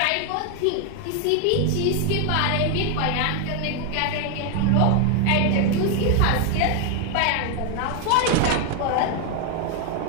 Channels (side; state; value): both; different; correlation 0.01